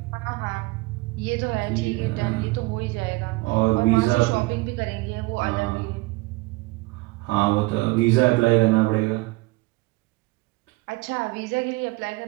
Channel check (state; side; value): quieter; left; 23.0 dB